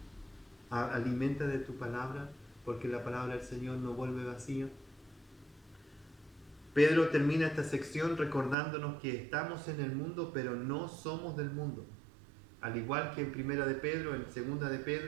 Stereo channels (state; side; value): drops out; left; at 8.6 s